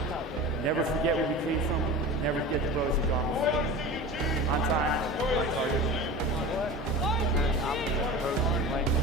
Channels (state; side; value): normal; both; correlation 0.33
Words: Never forget where you came from. Never forget the brothers who've gone before. On time, on target.